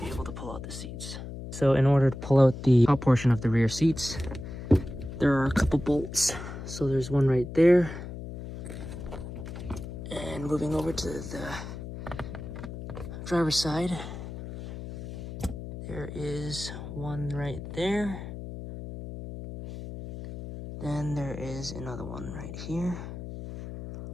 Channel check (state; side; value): noise; left; hum, 9 dB below the sound